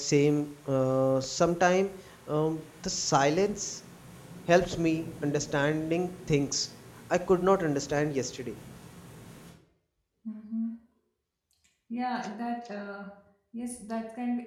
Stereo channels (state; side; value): identical; both; correlation 1.00